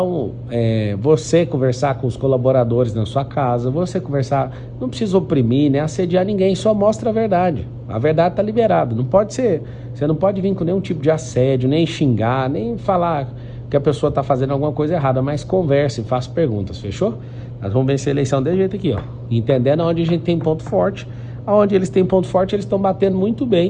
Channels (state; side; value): identical; both; correlation 1.00